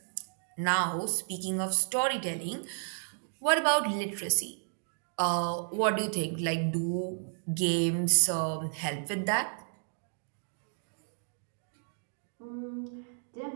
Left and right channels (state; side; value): silent; left; digital silence